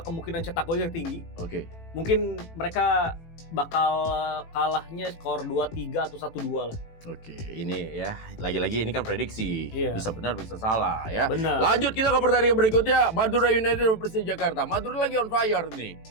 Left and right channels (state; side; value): late; right; 18 ms